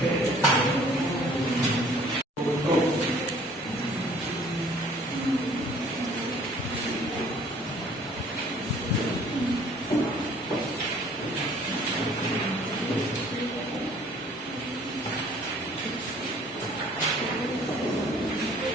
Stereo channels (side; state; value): both; normal; correlation 0.55